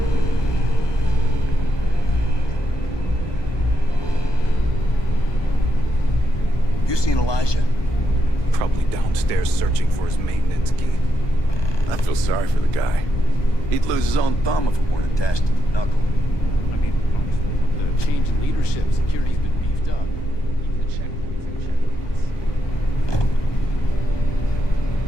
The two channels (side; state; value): right; late; 1.2 ms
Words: You seen Elijah? Probably downstairs searching for his maintenance key. I feel sorry for the guy. He'd lose his own thumb if it weren't attached to the knuckle. I mean, honestly, with the change in leadership, security's been beefed up. Even the checkpoints and checkpoints.